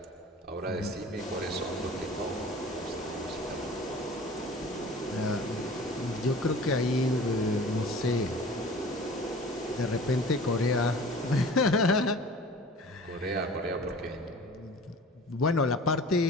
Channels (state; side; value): normal; both; correlation 0.43